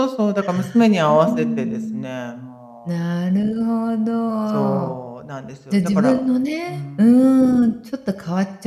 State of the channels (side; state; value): both; identical; correlation 1.00